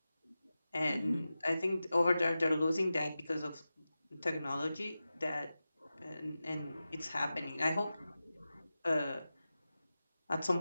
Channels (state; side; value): inverted; both; correlation -0.94